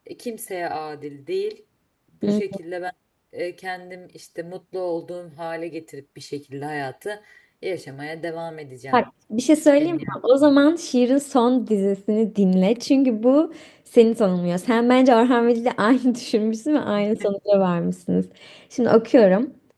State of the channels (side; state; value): both; identical; correlation 1.00